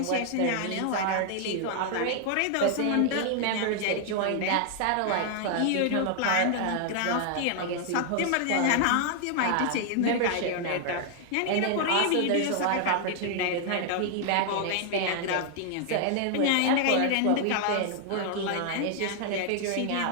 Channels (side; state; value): both; different; correlation 0.00